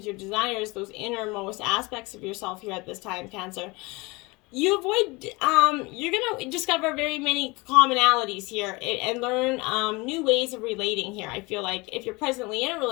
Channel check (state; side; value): quieter; right; 25.0 dB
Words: your desires, those innermost aspects of yourself here at this time, Cancer. You're going to discover very many commonalities here and learn new ways of relating here. I feel like if you're presently in a